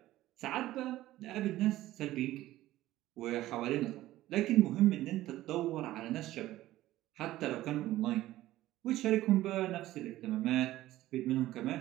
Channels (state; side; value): quieter; left; 15.4 dB